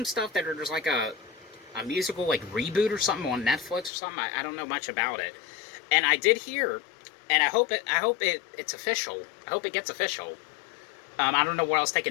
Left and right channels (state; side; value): drops out; right; at 3.9 s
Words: stuff that there's a musical reboot or something on Netflix or something. I don't know much about it, and I did hear, and I hope it's official. I hope it gets official. I don't know what else they